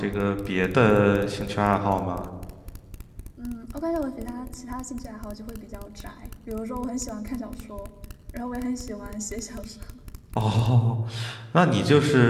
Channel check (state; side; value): identical; both; correlation 1.00